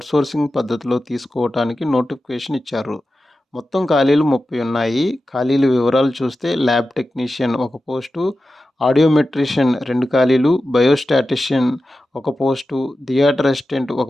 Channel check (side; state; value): both; normal; correlation 0.93